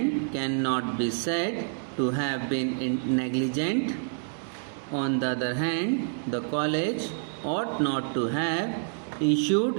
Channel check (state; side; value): silent; left; digital silence